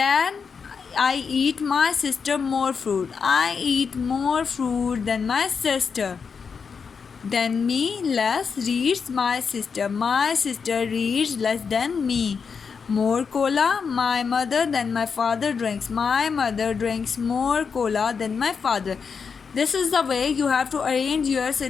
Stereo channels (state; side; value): quieter; right; 5.8 dB